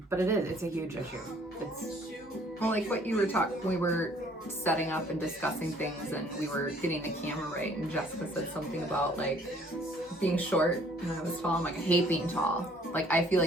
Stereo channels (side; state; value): both; normal; correlation 0.59